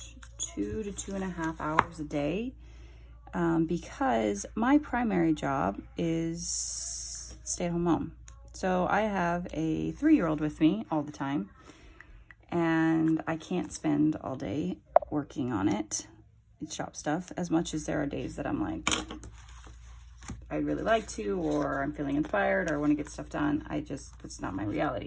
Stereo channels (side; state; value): both; identical; correlation 1.00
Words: 2 to 2.5 hours a day, because my primary job is stay-at-home mom. So I have a 3-year-old with me all the time, and I can't spend all day working on it. It's shop stuff, as much as there are days that I'm like, I'd really like to, or I'm feeling inspired, or I want to get stuff done. It's not my